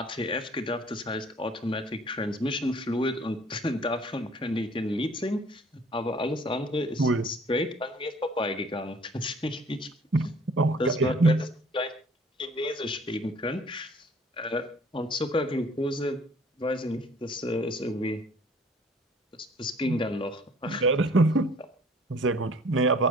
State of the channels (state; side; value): normal; both; correlation 0.54